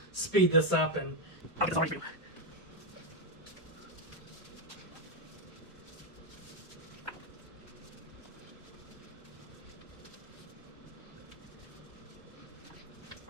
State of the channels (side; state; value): both; normal; correlation 0.04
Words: speed this up and I'll get this all ready for you.